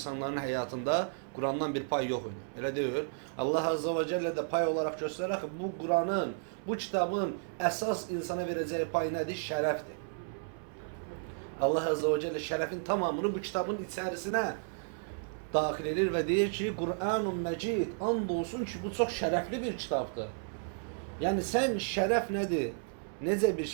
həyatında Kur'an'dan bir pay yox idi. Elə deyil. Allah Azze ve Celle de pay olarak göstərər ki, bu Kur'an'ın, bu kitabın əsas insana verəcəyi pay nədir? Şərəfdir. Allah Azze ve Celle şərəfin tamamını bu kitabın içərisinə daxil edir və deyir ki, Kur'an-ı Mecid, and olsun ki, bu çox şərəfli bir kitabdır. Yəni sən şərəf nədir? Necə bir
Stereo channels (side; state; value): left; silent; 56 dB below the other